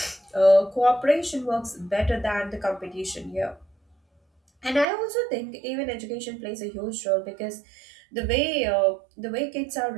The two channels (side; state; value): left; drops out; at 4.9 s